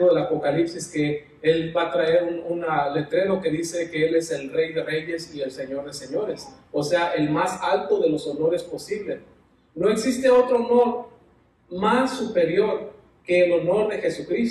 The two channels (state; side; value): identical; both; correlation 1.00